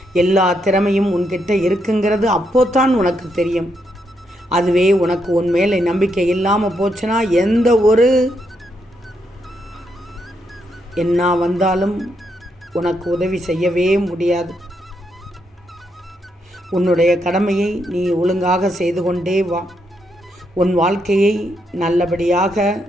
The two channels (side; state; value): both; normal; correlation 0.79